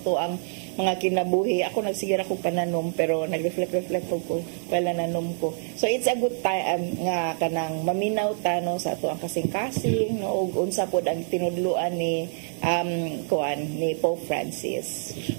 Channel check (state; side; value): silent; left; digital silence